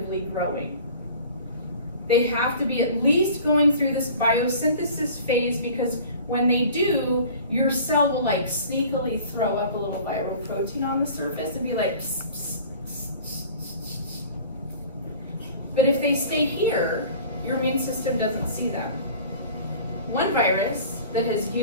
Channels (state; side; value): inverted; both; correlation -0.44